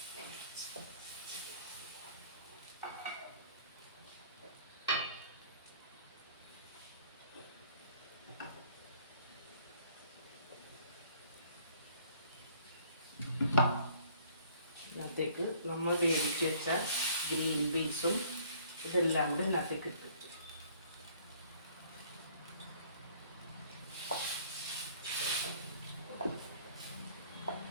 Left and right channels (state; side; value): inverted; both; correlation -0.59